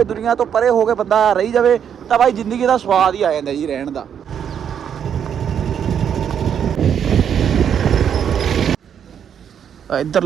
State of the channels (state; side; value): quieter; left; 8.4 dB